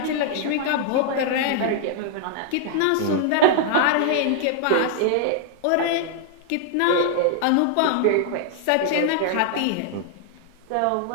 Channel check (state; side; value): different; both; correlation -0.01